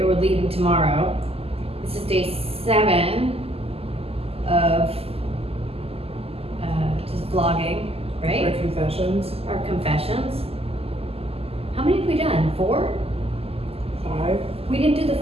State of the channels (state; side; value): late; left; 0.29 ms